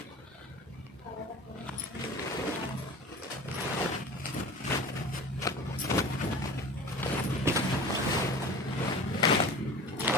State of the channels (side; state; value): both; normal; correlation 0.37